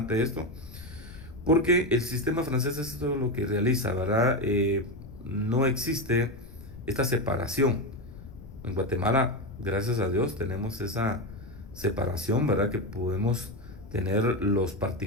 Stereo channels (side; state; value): left; noise; rumble, 16 dB below the sound